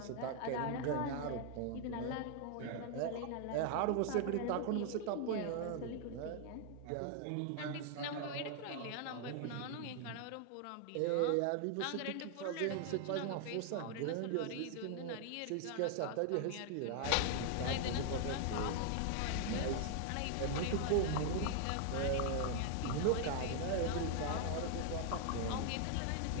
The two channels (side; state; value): both; different; correlation 0.00